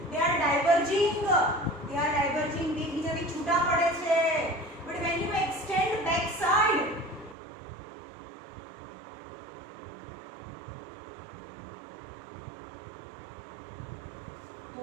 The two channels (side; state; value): left; drops out; at 7.4 s